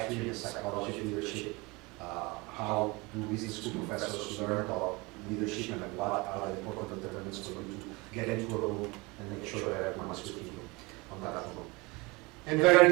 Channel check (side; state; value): left; quieter; 25.2 dB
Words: and the psychology of leadership, how do business school professors learn about leadership and what are the important determinants for you to get into a room and make sure that everyone is with you on that room. And very